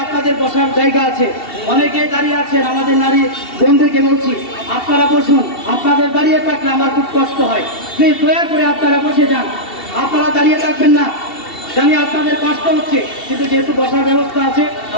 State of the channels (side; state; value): right; late; 2.7 ms